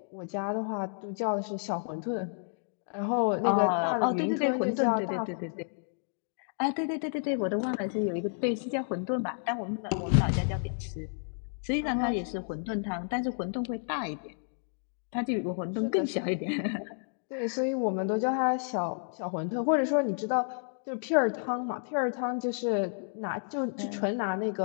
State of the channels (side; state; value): right; silent; digital silence